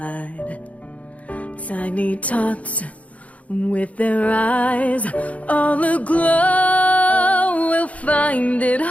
Tiny tots with their eyes all aglow will find it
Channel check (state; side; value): late; right; 0.067 ms